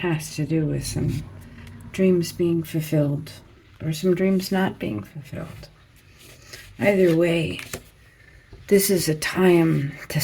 to do with some dreams being fulfilled or some dreams not being fulfilled. Either way, this is a time to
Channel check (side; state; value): both; identical; correlation 1.00